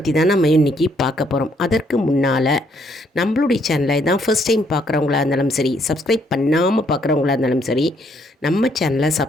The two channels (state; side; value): normal; both; correlation 0.70